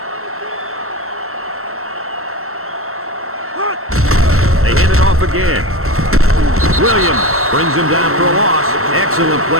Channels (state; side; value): late; left; 0.63 ms